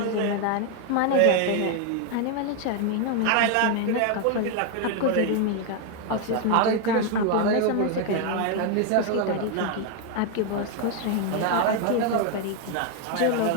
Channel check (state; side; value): different; both; correlation 0.01